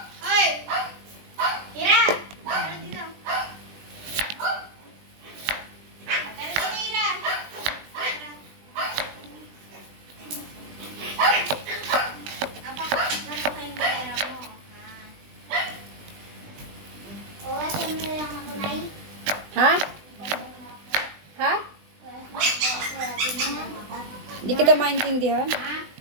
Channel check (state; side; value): late; left; 20 ms